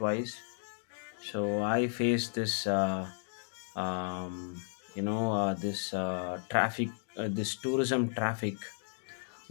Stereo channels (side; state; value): right; silent; digital silence